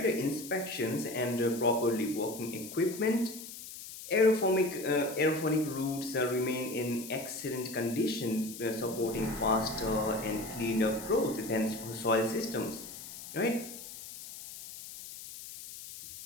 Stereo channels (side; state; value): left; noise; hiss, 12 dB below the sound